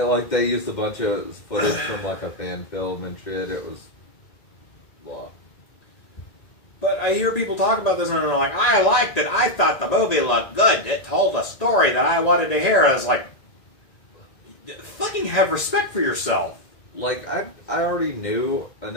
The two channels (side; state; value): right; late; 1.9 ms